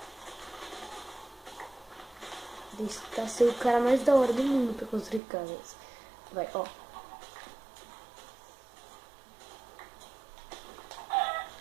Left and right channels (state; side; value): drops out; left; at 5.2 s